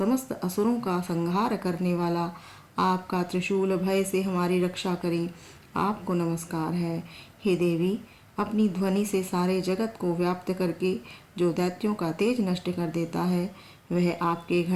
असुरों का संहार करने वाला आपका त्रिशूल भय से हमारी रक्षा करें आपको नमस्कार है। हे देवी, अपनी ध्वनि से सारे जगत को व्याप्त करके जो दैत्यों का तेज नष्ट कर देता है, वह आपके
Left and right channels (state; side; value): identical; both; correlation 1.00